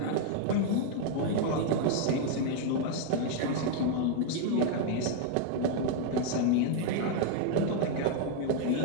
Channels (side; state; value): both; different; correlation 0.00